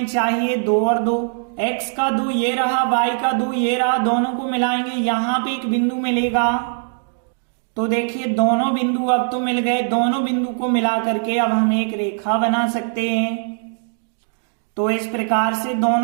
चाहिए 2 और 2, x का 2 ये रहा, y का 2 ये रहा, दोनों को मिलाएंगे यहाँ पे एक बिंदु मिलेगा। तो देखिए दोनों बिंदु अब तो मिल गए, दोनों बिंदु को मिला करके अब हम एक रेखा बना सकते हैं। तो इस प्रकार से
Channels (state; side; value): silent; left; 65 dB below the other